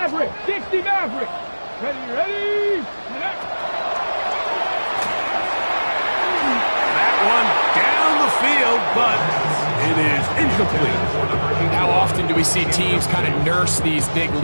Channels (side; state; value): both; inverted; correlation -1.00